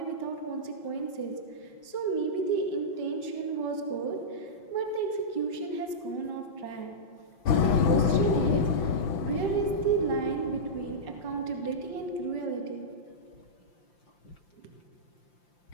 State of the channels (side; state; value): right; late; 5.1 ms